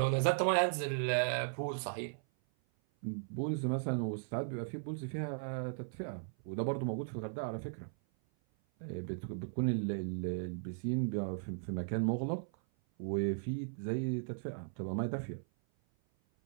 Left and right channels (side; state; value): left; silent; 53 dB below the other